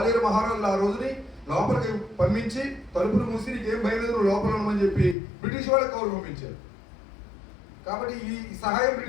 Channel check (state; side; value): drops out; right; at 5.2 s